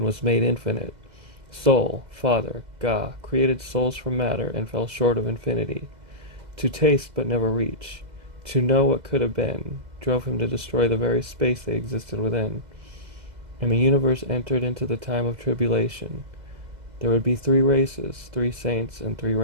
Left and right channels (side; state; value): left; late; 2.0 ms